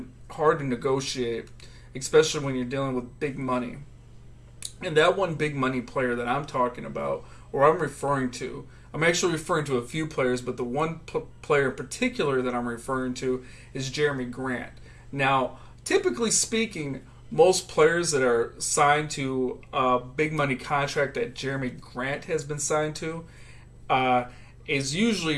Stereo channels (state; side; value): identical; both; correlation 1.00